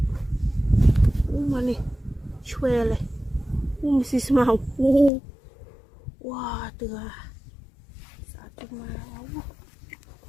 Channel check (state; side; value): drops out; right; at 5.1 s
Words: mà nè choe này xí màu wow từ sao chúng mà